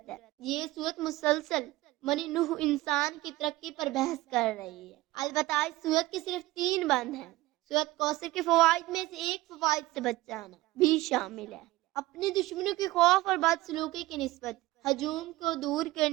ہے۔ یہ سورت مسلسل بنی نوح انسان کی ترقی پر بحث کر رہی ہے۔ البتہ اس سورت کے صرف 3 بند ہیں۔ سورت کوثر کے فوائد میں سے ایک فوائد سے بچ جانا بھی شامل ہے۔ اپنے دشمنوں کے خوف اور بدسلوکی کی نسبت ہجوم کو دور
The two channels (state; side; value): quieter; left; 18.6 dB